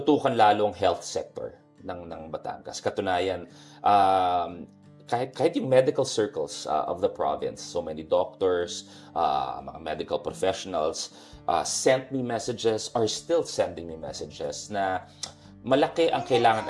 lalo ang health sector ng Batangas. Katunayan, kahit yung medical circles of the province, so many doctors, mga medical professionals sent me messages, are still sending me messages na malaki ang kailangan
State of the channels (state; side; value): identical; both; correlation 1.00